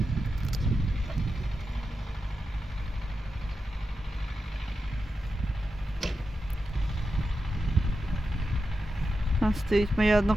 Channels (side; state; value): both; normal; correlation 0.89